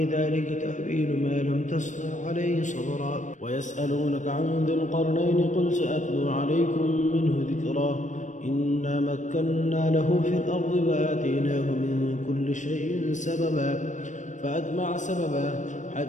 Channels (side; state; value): right; late; 0.36 ms